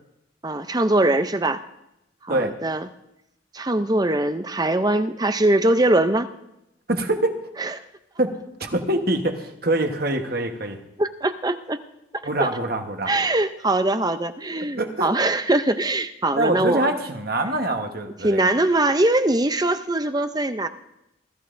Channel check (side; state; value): both; normal; correlation 0.45